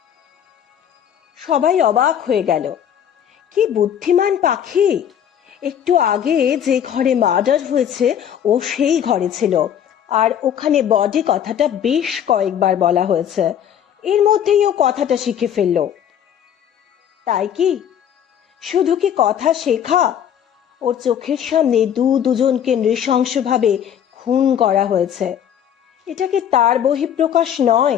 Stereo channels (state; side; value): quieter; right; 9.3 dB